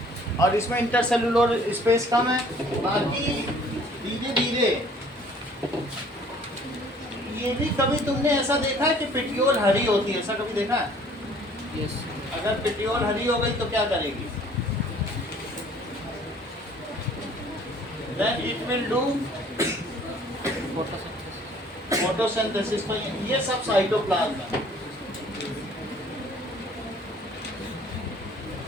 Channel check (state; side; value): normal; both; correlation 0.55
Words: और इसमें इंटरसेलुलर स्पेस कम है। बाकी धीरे धीरे ये भी, कभी तुमने ऐसा देखा है कि पिटियोल हरी होती है, ऐसा कभी देखा है? Yes. अगर पिटियोल हरी हो गई तो क्या करेगी, then it will do photosynthesis. तो ये सब साइटोप्लाज्म है।